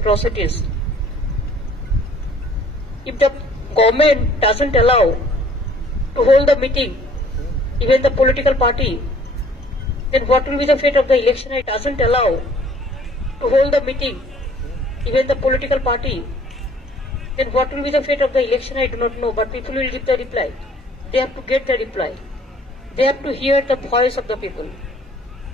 If the government doesn't allow to hold the meeting, even the political party, then what will be the fate of the election? It doesn't allow to hold the meeting, even the political party, then what will be the fate of the election? I do not know, but people will give the reply. They have to get the reply. They have to hear the voice of the people.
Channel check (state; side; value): normal; both; correlation 0.57